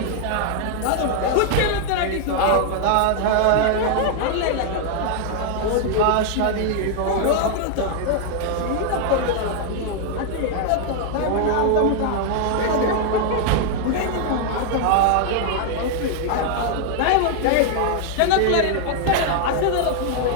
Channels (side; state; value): both; different; correlation 0.00